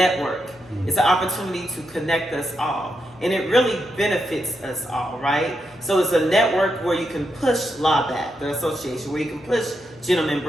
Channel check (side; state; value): both; normal; correlation 0.84